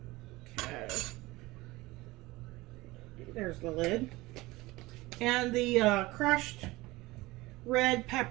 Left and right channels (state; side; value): quieter; left; 20.3 dB